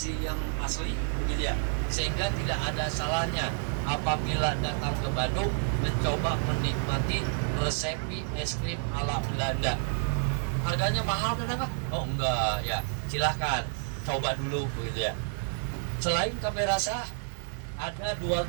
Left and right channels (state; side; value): silent; left; 58 dB below the other